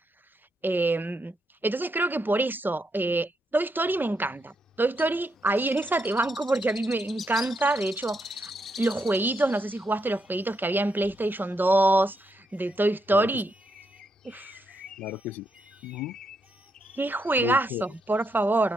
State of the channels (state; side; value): normal; both; correlation 0.80